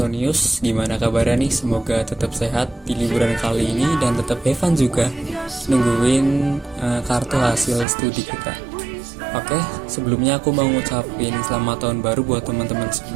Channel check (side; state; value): left; drops out; at 7.9 s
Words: gimana kabarnya nih? Semoga tetap sehat di liburan kali ini dan tetap have fun juga nungguin kartu hasil studi kita. Oke, sebelumnya aku mau ngucapin selamat tahun baru buat teman-teman